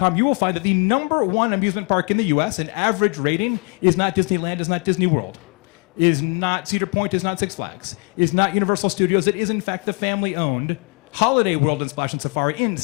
you will find that the #1 amusement park in the US, an average rating, is not Disneyland, is not Disney World, is not Cedar Point, is not Six Flags, is not Universal Studios. It is in fact the family-owned Holiday World and Splash and Safari in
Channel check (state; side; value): quieter; right; 34.8 dB